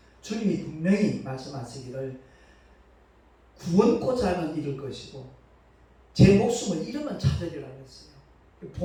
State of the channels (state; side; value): identical; both; correlation 1.00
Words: 주님이 분명히 말씀하시기를 구원코자 하면 잃을 것이고 제 목숨을 잃으면 찾으리라고 했어요.